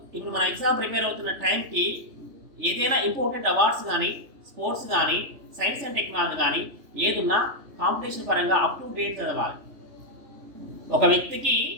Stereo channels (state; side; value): late; left; 3.4 ms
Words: ఇప్పుడు మన ఎగ్జామ్ ప్రిపేర్ అవుతున్న టైంకి ఏదైనా ఇంపార్టెంట్ అవార్డ్స్ కానీ, స్పోర్ట్స్ కానీ, సైన్స్ అండ్ టెక్నాలజీ కానీ ఏదున్నా కాంపిటీషన్ పరంగా అప్ టు డేట్ చదవాలి. ఒక వ్యక్తికి